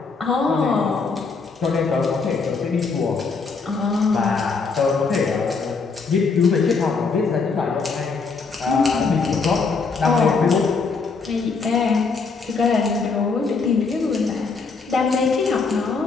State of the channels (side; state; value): right; quieter; 4.6 dB